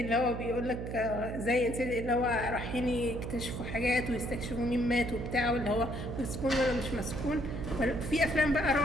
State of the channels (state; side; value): noise; right; hum, 6 dB below the sound